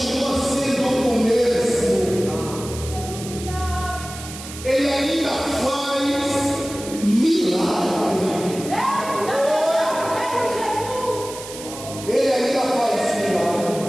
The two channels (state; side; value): noise; right; hiss, 12 dB below the sound